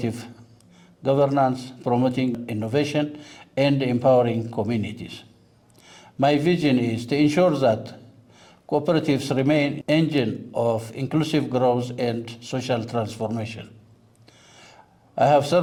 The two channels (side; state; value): both; identical; correlation 1.00